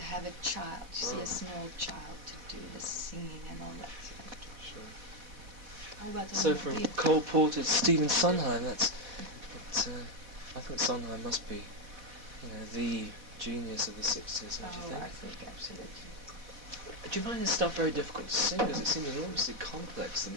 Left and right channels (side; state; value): left; late; 4.1 ms